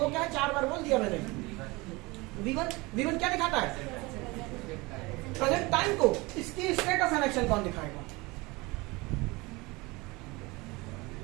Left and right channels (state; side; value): quieter; left; 23.8 dB